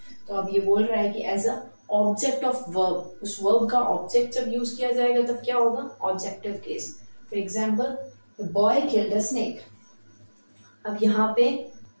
तो अब ये बोल रहा है कि as a object of verb, उस वर्ब का ऑब्जेक्ट जब यूज किया जाएगा तब क्या होगा? Objective case. For example, the boy killed a snake. अब यहाँ पे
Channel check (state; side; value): inverted; both; correlation -1.00